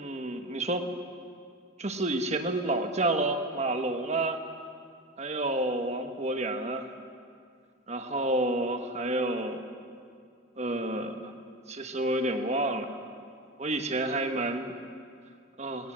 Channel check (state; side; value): normal; both; correlation 0.24